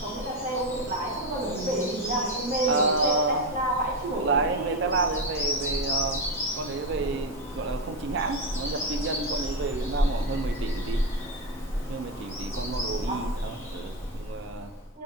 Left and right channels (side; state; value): both; normal; correlation 0.12